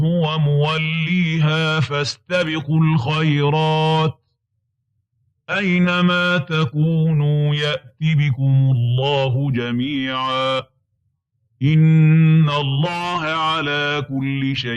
موليها فاستبقوا الخيرات أينما تكونوا يأت بكم الله جميعا إن الله على كل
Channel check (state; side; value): identical; both; correlation 1.00